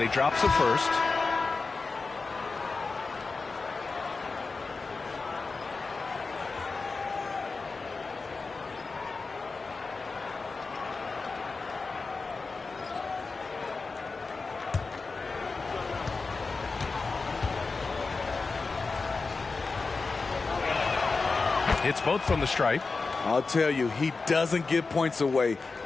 he drops it first. Hits both from the stripe. I'll tell you, he doesn't give points away.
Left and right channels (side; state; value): right; quieter; 4.1 dB